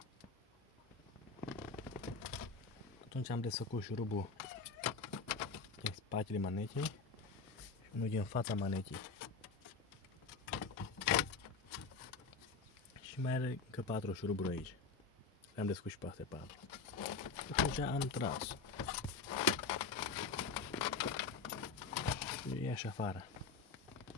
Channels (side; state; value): right; quieter; 4.6 dB